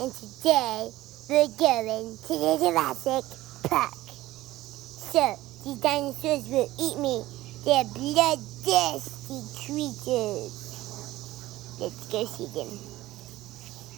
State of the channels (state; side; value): quieter; left; 16.7 dB